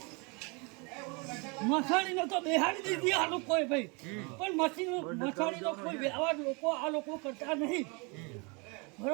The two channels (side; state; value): left; quieter; 30.6 dB